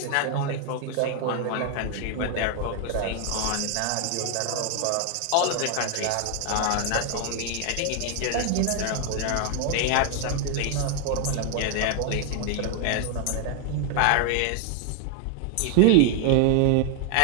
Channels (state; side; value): different; both; correlation 0.00